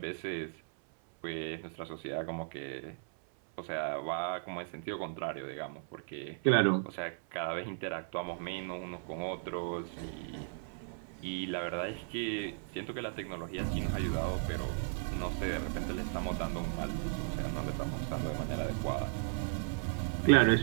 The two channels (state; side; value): silent; left; 54 dB below the other